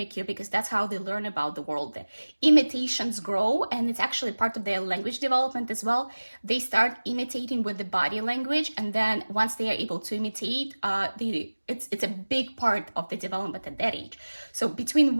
you, because that's how they learn about the world. The imitations grow, and it's actually part of their language development as well. They start imitating with the body language, and then once they are able to imitate, the it's a big part of the development at that age. So between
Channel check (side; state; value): both; inverted; correlation -1.00